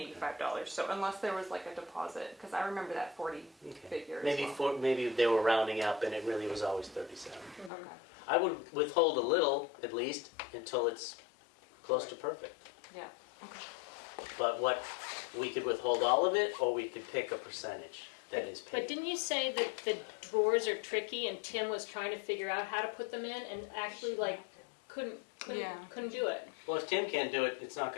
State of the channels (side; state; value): right; drops out; at 7.7 s